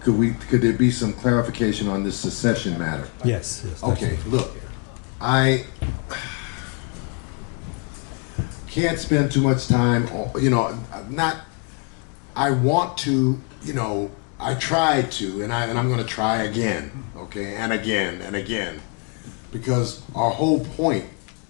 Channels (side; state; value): right; quieter; 37.2 dB